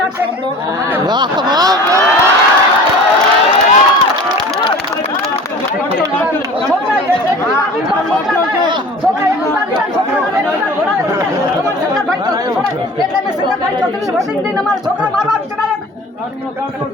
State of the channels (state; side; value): normal; both; correlation 0.41